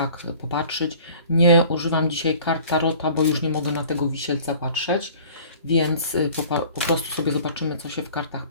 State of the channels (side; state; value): both; inverted; correlation -0.48